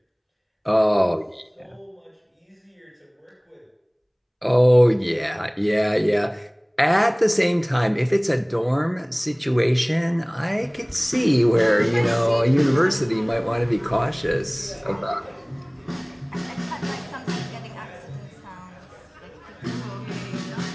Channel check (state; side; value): identical; both; correlation 1.00